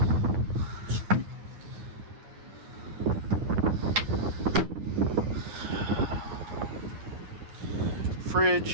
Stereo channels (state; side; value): late; left; 9.6 ms